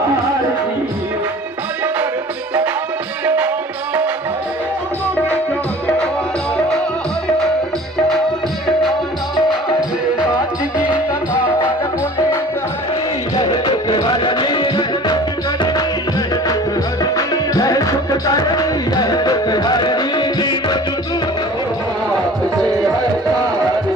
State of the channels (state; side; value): normal; both; correlation 0.44